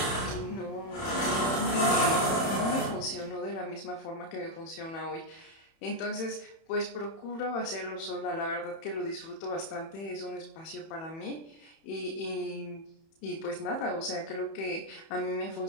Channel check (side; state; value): right; late; 31 ms